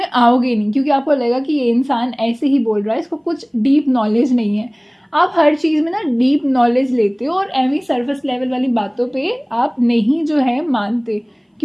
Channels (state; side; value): identical; both; correlation 1.00